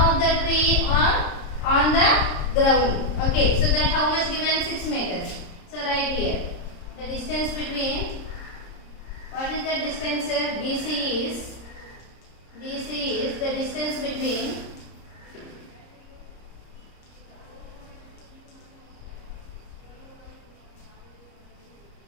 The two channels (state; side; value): late; right; 30 ms